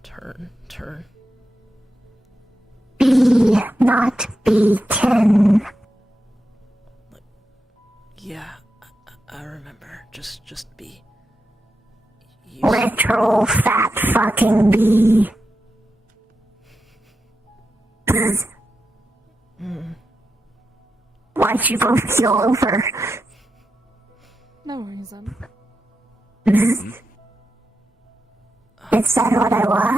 Bee, not B10. Yeah, I remember. Just bee. Literal fat fucking bee. Why'd you both keel over? No reason. Is that what I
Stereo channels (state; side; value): normal; both; correlation 0.88